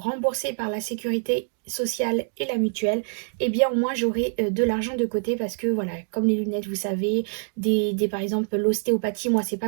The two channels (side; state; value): left; silent; 62 dB below the other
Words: par la sécurité sociale et la mutuelle, eh bien au moins j'aurai de l'argent de côté parce que voilà, comme les lunettes, vous savez, par exemple l'ostéopathie, moi c'est